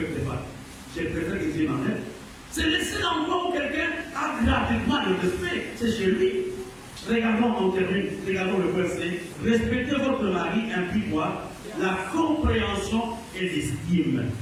pas. Je préfère que Dieu m'en aide. C'est le seul endroit où quelqu'un a gratuitement le respect, c'est chez lui. Regardons, on termine, regardons le verset. Respectez votre mari implique quoi? La compréhension et l'estime.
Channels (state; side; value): identical; both; correlation 1.00